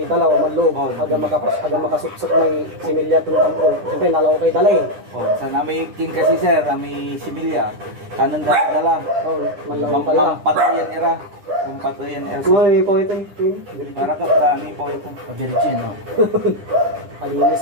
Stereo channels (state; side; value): late; left; 9.9 ms